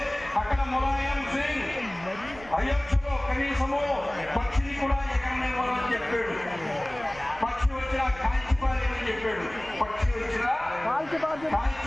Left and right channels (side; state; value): right; noise; rumble, 19 dB below the sound